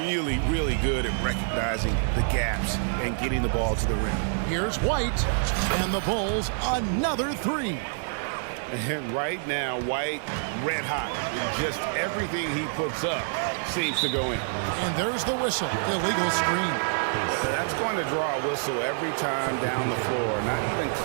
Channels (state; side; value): silent; left; digital silence